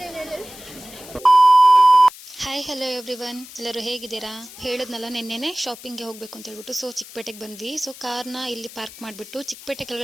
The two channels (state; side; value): noise; left; hiss, 17 dB below the sound